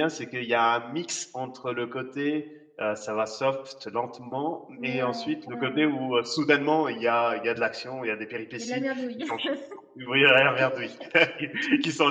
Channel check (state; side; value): identical; both; correlation 1.00